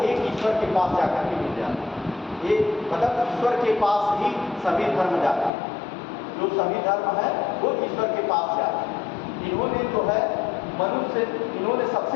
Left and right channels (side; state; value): right; drops out; at 5.5 s